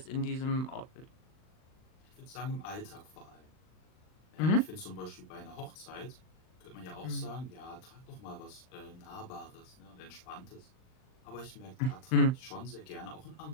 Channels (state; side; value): late; right; 39 ms